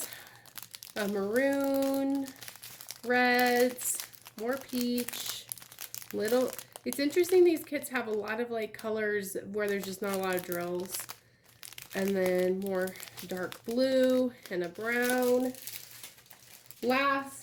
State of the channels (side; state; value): both; identical; correlation 1.00